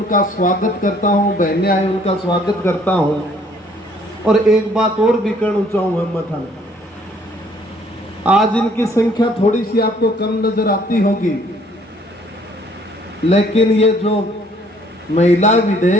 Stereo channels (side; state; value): both; normal; correlation 0.61